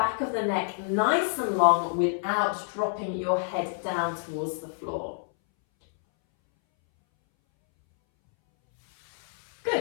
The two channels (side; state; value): right; silent; 60 dB below the other